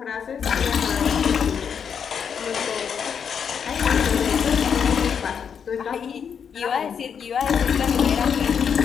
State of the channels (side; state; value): right; quieter; 7.2 dB